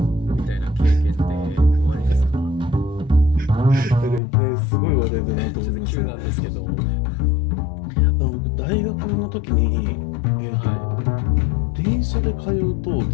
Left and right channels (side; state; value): right; drops out; at 4.2 s